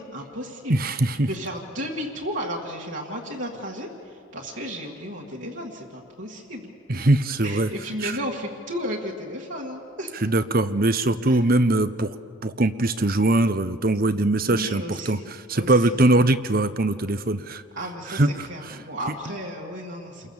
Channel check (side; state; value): both; normal; correlation 0.55